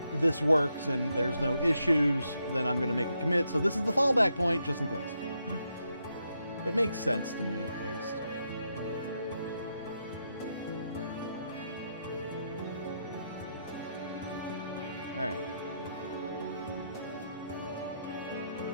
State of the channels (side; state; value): both; inverted; correlation -0.81